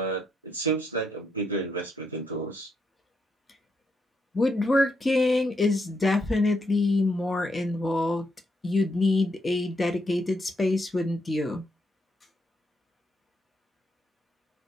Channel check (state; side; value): normal; both; correlation 0.79